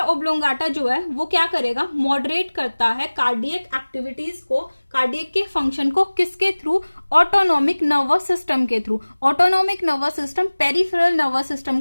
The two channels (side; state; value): both; inverted; correlation -1.00